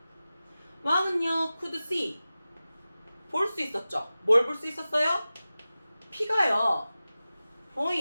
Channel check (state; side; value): inverted; both; correlation -0.96